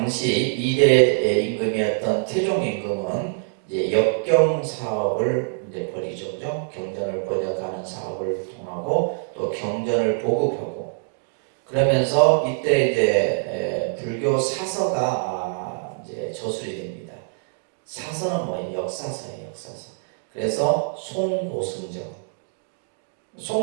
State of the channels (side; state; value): left; silent; digital silence